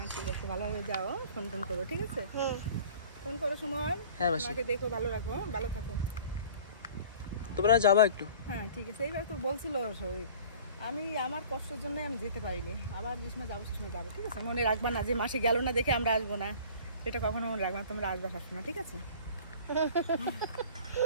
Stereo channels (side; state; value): both; inverted; correlation -0.47